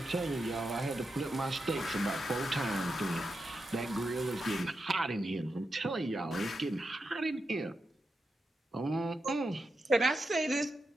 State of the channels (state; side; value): normal; both; correlation 0.87